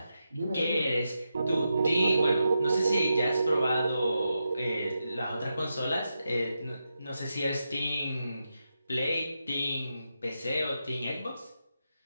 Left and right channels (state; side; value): inverted; both; correlation -0.87